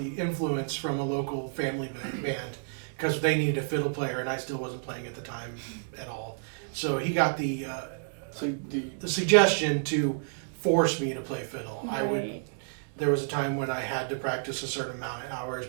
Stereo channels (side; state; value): left; silent; digital silence